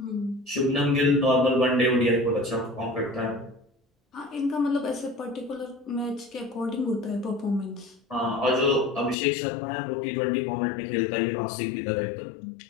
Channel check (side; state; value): right; drops out; at 9.2 s